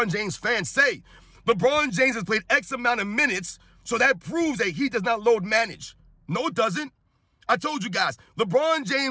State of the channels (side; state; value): both; identical; correlation 1.00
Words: James fans say, LeBron James has played X amount of minutes, so that proves that he does not load manage. No, it doesn't. I told you guys, LeBron